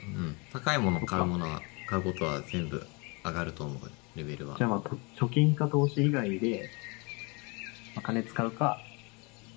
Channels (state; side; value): quieter; right; 30.0 dB